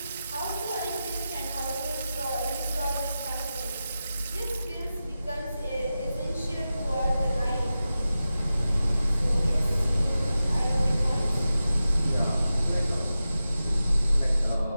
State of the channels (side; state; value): both; inverted; correlation -0.93